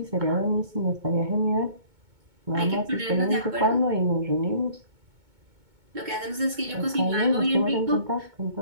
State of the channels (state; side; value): late; left; 2.2 ms